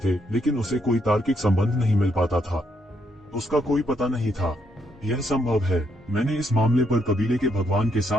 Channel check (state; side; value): normal; both; correlation 0.75